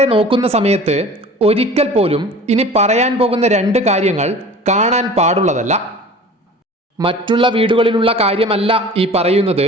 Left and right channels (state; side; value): normal; both; correlation 0.42